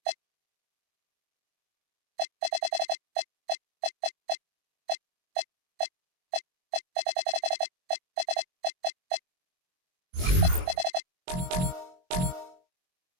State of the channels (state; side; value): late; left; 22 ms